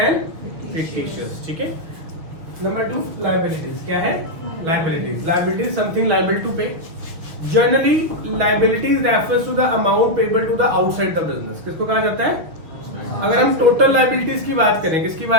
fictitious. ठीक है, नंबर 2 लायबिलिटीज। क्या है? Liabilities. Liabilities something liable to pay. Generally liabilities refers to the amount payable to the outside the business. किसको कहा जाता है? अगर हम टोटल लायबिलिटीज की बात करें, किसकी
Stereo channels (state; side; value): late; left; 6.3 ms